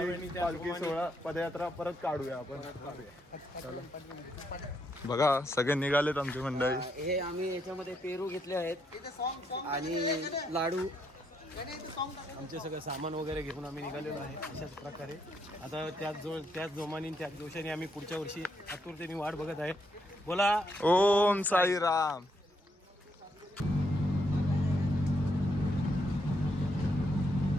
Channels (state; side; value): normal; both; correlation 0.76